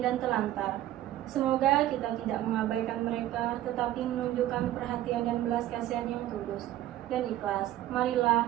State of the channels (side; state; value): left; quieter; 13.6 dB